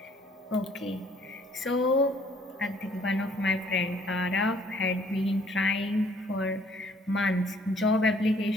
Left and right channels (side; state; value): both; normal; correlation 0.61